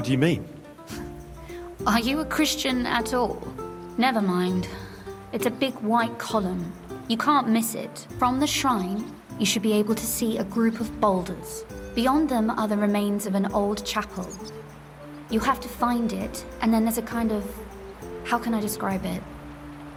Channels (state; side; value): identical; both; correlation 1.00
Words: you mean? Are you a Christian at all? Never mind. It's a big white column. You can't miss it. From the shrine, you should be able to see a group of boulders. Beyond them are the remains of an old chapel. You have to find it, and then there's a kind of... how can I describe it?